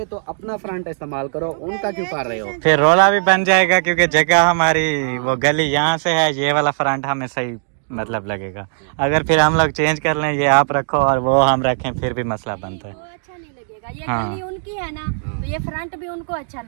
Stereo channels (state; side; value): silent; left; digital silence